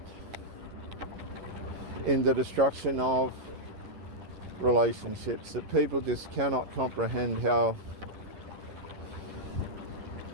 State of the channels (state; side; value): late; left; 11 ms